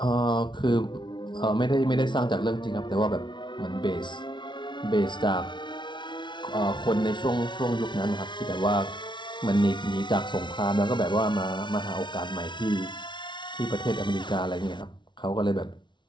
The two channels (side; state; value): right; late; 0.23 ms